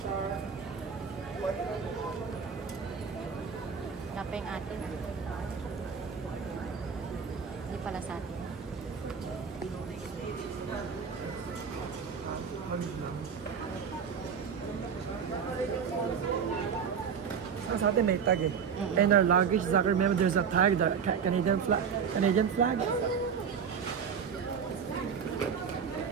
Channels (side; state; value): left; quieter; 6.7 dB